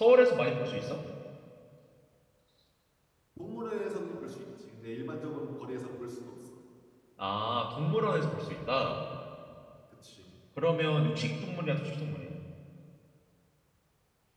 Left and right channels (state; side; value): identical; both; correlation 1.00